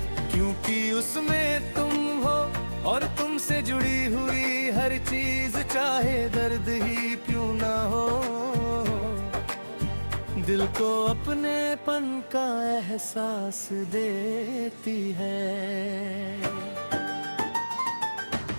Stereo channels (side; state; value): both; inverted; correlation -1.00